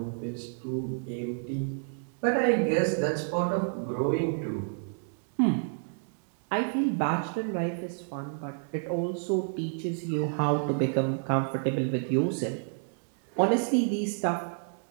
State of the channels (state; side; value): silent; left; 58 dB below the other